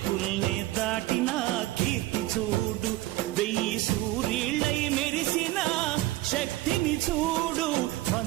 దాటిన కీర్తి చూడు 1000 సూర్యుళ్ళై మెరిసిన శక్తిని చూడు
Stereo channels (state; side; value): quieter; left; 17.1 dB